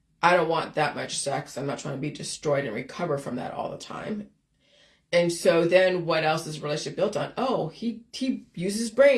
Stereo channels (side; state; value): both; identical; correlation 1.00